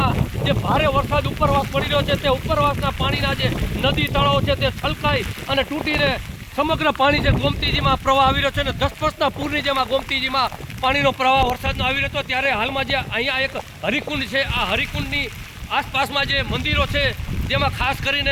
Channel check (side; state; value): both; identical; correlation 1.00